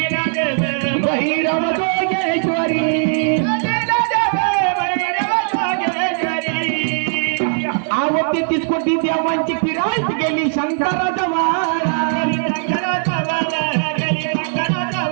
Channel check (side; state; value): left; silent; digital silence